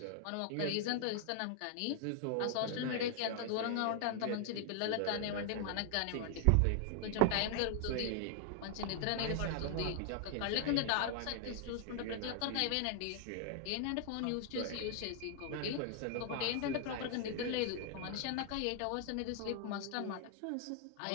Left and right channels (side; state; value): both; different; correlation 0.00